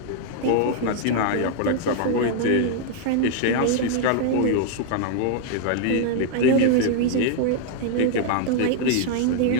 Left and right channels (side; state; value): both; different; correlation 0.00